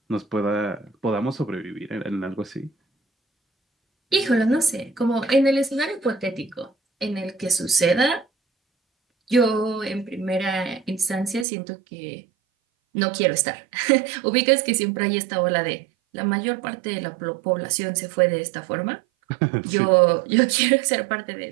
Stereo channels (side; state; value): left; drops out; at 11.5 s